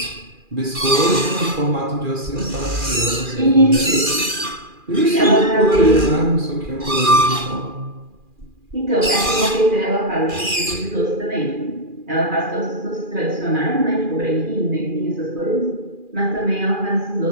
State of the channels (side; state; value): left; late; 2.4 ms